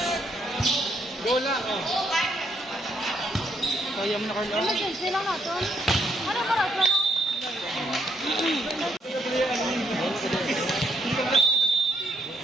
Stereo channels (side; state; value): both; normal; correlation 0.73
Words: Go lang, oh. Kaya mo na Carla. Emergency lang natin. Ano ba natin?